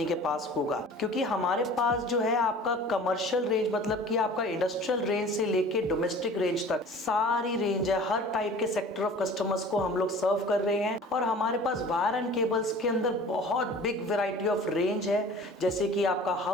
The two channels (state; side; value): normal; both; correlation 0.43